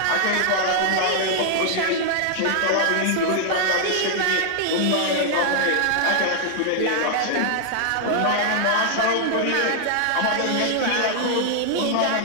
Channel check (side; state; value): both; different; correlation 0.00